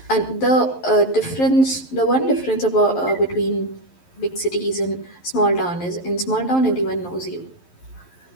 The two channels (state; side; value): late; right; 11 ms